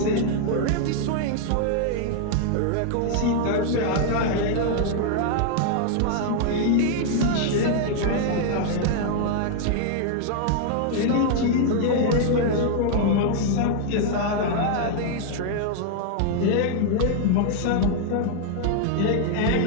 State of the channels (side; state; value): both; different; correlation 0.00